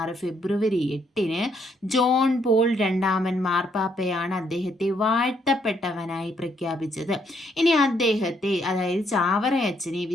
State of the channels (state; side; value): normal; both; correlation 0.72